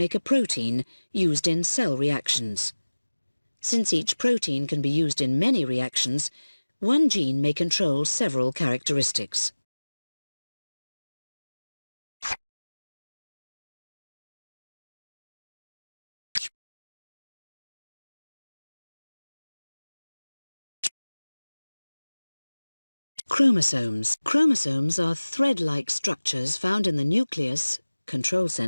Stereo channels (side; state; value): both; inverted; correlation -1.00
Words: a protein used in cell reactions. Since each protein can be used in many reactions, one gene may control several characteristics. Chromosomes. Chromosomes are thread-like structures found in the nucleus, control